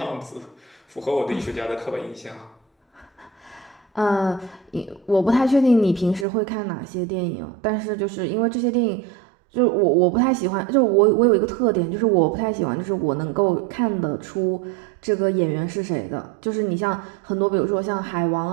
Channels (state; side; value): drops out; left; at 6.2 s